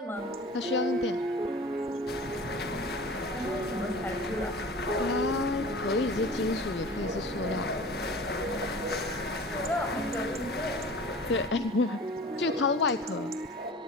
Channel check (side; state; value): both; normal; correlation 0.40